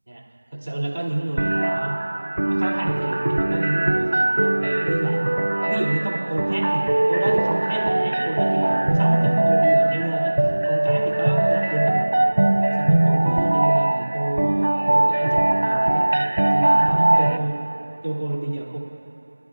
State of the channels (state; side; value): inverted; both; correlation -1.00